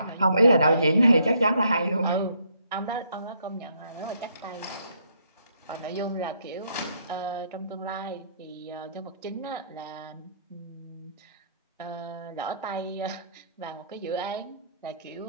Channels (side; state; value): both; inverted; correlation -0.69